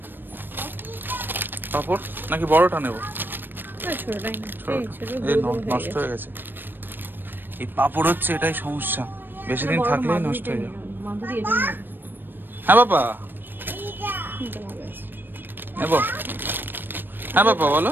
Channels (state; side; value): late; left; 0.094 ms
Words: পাপড় নাকি বড়টা নেবো? ছোটটাই না, নষ্ট হয়ে গেছে। এই পাপড় হচ্ছে এটাই সমস্যা, বেশি দিন থাকলেই নষ্ট হয়ে যাবে। হ্যাঁ বাবা, নেবো? হ্যাঁ বাবা বলো।